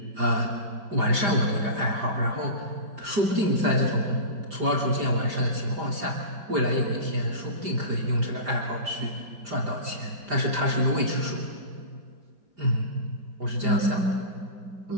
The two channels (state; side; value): late; left; 5.0 ms